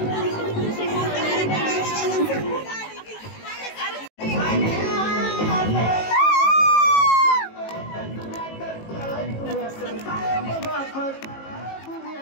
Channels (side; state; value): right; late; 18 ms